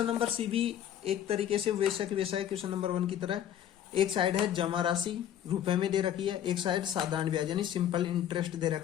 number C भी एक तरीके से वैसा की वैसा है क्वेश्चन नंबर 1 की तरह। एक साइड है जमा राशि रुपए में दे रखी है, एक साइड साधारण ब्याज यानी सिंपल इंटरेस्ट दे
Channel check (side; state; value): right; quieter; 10.5 dB